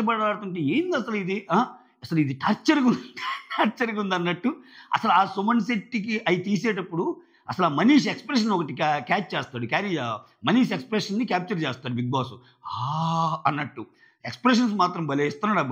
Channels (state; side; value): identical; both; correlation 1.00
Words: ఆడుతుంటే ఏంది అసలు ఇది? అసలు ఇది టార్చర్‌గా ఉంది అన్నట్టు. అసలు ఆ సుమన్ శెట్టికి అయి తీసేటప్పుడు అసలు ఆ మనీష్ ఎక్స్‌ప్రెషన్ ఒకటి క్యాచ్ చేస్తాడు. మనీష్ ఎక్స్‌ప్రెషన్‌ని క్యాప్చర్ చేస్తాడు బిగ్ బాస్. అన్నట్టు. ఎక్స్‌ప్రెషన్స్ మాత్రం భలే